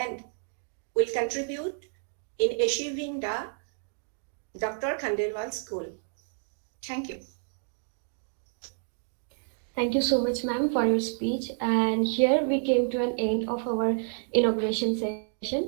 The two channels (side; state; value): left; silent; 58 dB below the other